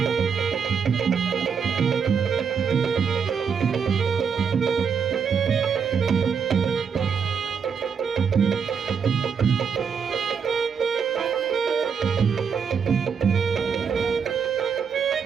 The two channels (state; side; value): quieter; left; 6.5 dB